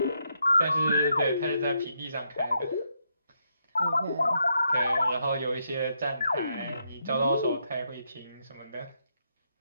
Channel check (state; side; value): inverted; both; correlation -0.79